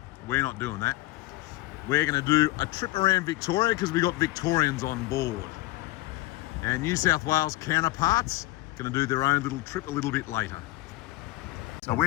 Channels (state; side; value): quieter; right; 18.5 dB